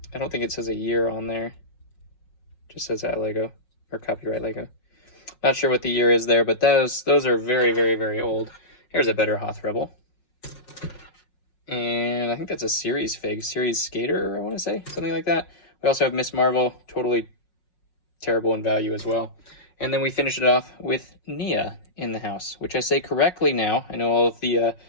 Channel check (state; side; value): late; right; 5.5 ms